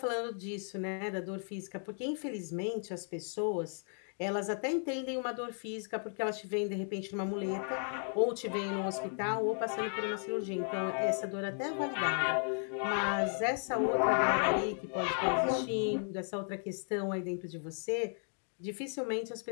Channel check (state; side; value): silent; right; 54 dB below the other